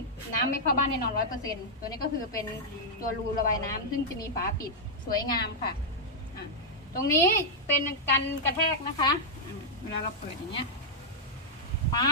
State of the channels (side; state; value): both; normal; correlation -0.07